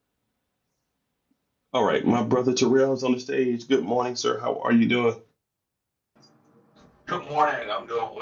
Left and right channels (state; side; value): identical; both; correlation 1.00